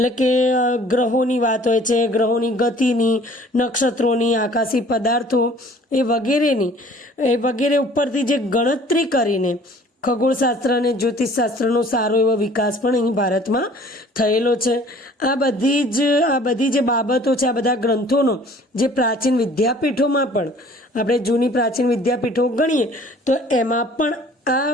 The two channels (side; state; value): both; normal; correlation 0.52